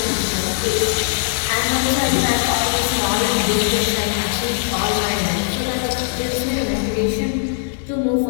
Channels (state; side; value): silent; right; digital silence